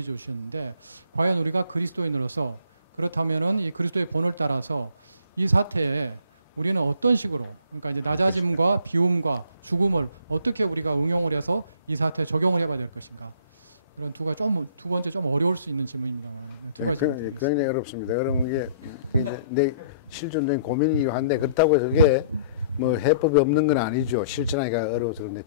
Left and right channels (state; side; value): inverted; both; correlation -0.58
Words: 과연 우리가 그리스도인으로서 그렇다면은 이 그리스도의 본을 따라서 이 사태에 우리는 어떤 식으로, 그러니까 이제 낮아짐과 비움과 죽음을 어떻게 우리가 응용을 해서 이 사태에 적용을 해봐야 될 것인가. 이런 두 번째 좀 어려울 수 있는 질문입니다만 두 가지 드리겠습니다. 굉장히 어렵습니다. 그러면 이게 내 실존적인 고민이기도 한데, 그렇다고 해서 그게 뭐 해법이 없는 건 아니죠. 실천하기가 어려워서. 그런데